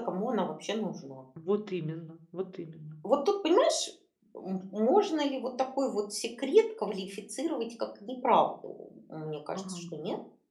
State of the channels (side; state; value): both; identical; correlation 1.00